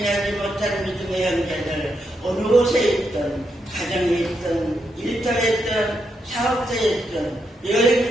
못한 믿음의 형제들 어느 곳에 있든 가정에 있든 일터에 있든 사업자에 있든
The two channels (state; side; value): normal; both; correlation 0.81